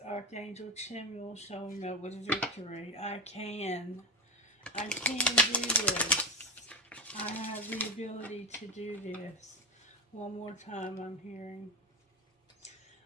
Archangel Chimuel showing up with victory. I can do this. I have the ability to do this. One more time I'm hearing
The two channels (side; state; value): both; normal; correlation 0.18